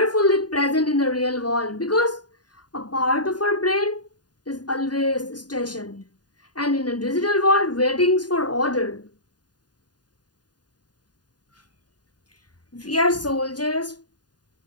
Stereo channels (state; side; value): late; right; 0.69 ms